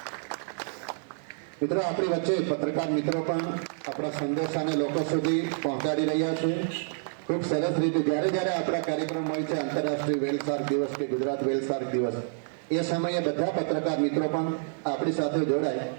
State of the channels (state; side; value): silent; left; 59 dB below the other